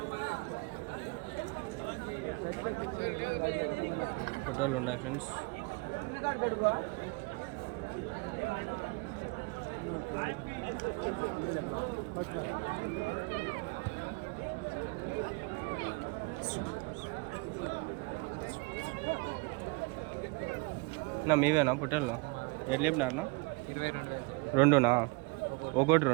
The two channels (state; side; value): quieter; left; 28.9 dB